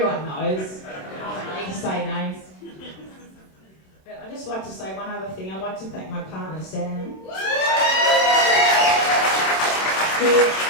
knows. I don't need to say names. But I'd just like to say one other thing. I'd like to thank my partner, Sam. I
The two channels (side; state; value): right; late; 27 ms